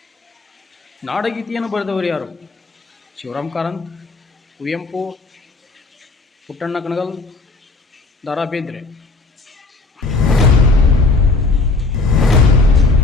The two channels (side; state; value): right; quieter; 3.7 dB